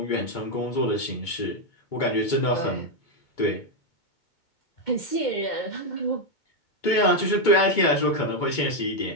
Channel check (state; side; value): late; right; 2.2 ms